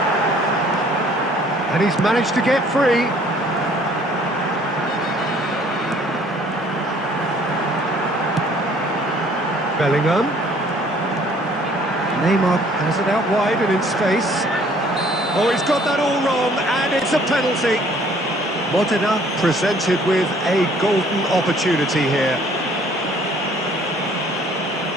And he's managed to get free. Bellingham. Neymar has it out wide and in space. Oh, he's got that all wrong, and it's a penalty. Modena presented with a golden opportunity here.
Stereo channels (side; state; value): both; normal; correlation 0.58